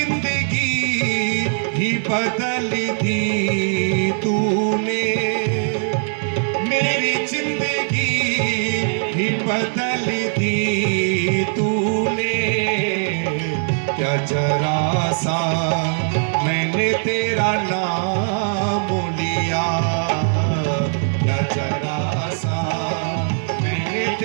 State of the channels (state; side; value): silent; left; digital silence